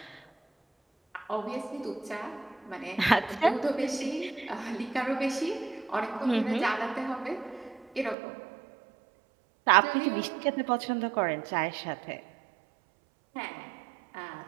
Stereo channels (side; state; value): left; drops out; at 8.2 s